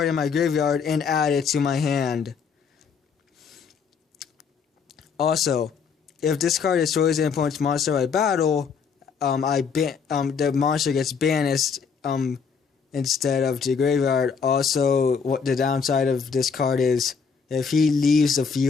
in my graveyard and add it to my hand. Also, if this card destroys an opponent's monster by battle, the monster gets banished instead of to the graveyard. Also, what the downside of this card is, if he leaves the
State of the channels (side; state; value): right; quieter; 5.9 dB